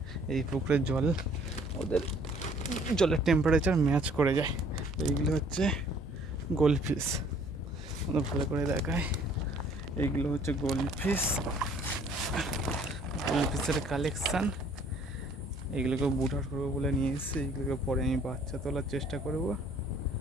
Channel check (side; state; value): both; normal; correlation 0.58